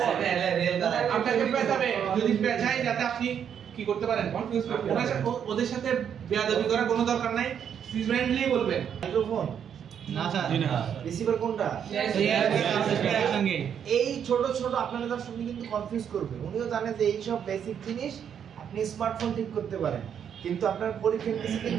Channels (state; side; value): quieter; left; 8.4 dB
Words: আপনাকে পেছাবে, যদি পেছায় যাতে আপনি কি করতে পারেন, কনফিউজ করতে পারেন। ওদের সাথে বেয়াদবি করার কোনো দরকার নাই, ফ্রেন্ডলি বলবেন। মাইক্রোফোন না স্যার, জি না। রিসিভার কোনটা? একসঙ্গে। এই ছোট ছোট আপনাদের দর্শক কিন্তু কনফিউজ করবে। উনিও জানে যে এই সব বেসিক জিনিস আপনি স্মার্টফোন ঠিক করতে পারেন, কিন্তু আপনার পরীক্ষার কিছু